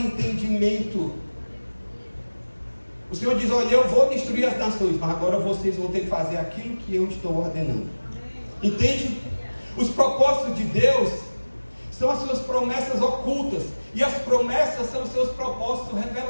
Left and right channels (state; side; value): inverted; both; correlation -1.00